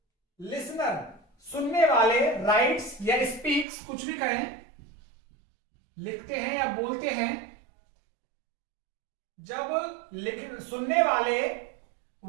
लिसनर सुनने वाले राइट्स या स्पीक्स कुछ भी करें, लिखते हैं या बोलते हैं, जब सुनने वाले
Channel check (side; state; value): left; drops out; at 3.7 s